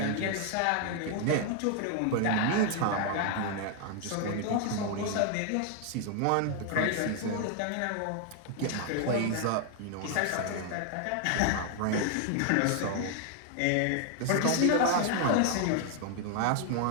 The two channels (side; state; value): both; different; correlation 0.00